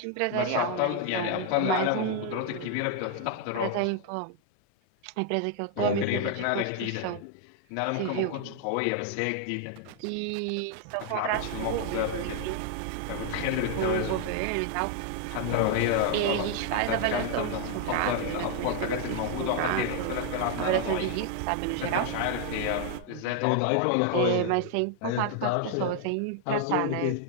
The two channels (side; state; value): both; different; correlation 0.00